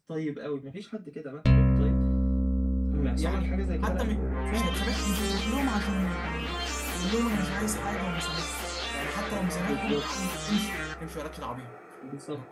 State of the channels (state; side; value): identical; both; correlation 1.00